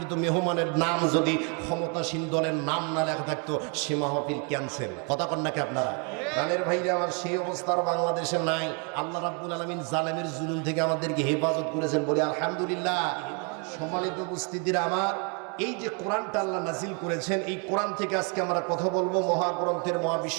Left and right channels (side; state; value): left; quieter; 36.3 dB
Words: মেহমানের নাম যদি ক্ষমতাসীন দলের নাম না লেখা থাকতো সে মাহফিল ক্যান্সেল। কথা কন নাকি আপনারা? প্রাণের ভাইরা আমার, সেই অবস্থার বাংলাদেশে নাই। আল্লাহ রাব্বুল আলামিন জালেমের জুলুম থেকে আমাদেরকে হেফাজত করেছেন, বলি আলহামদুলিল্লাহ। সম্মানিত উপস্থিতিরা আমার, এই যে কোরআনটা আল্লাহ নাজিল করেছেন, এই কোরআন থেকে আজকে আমরা কথা বলবো, মহাগ্রন্থের